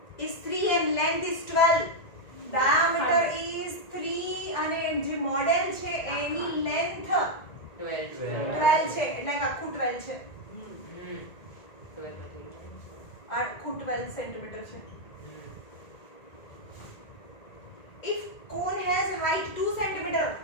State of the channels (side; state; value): right; late; 1.9 ms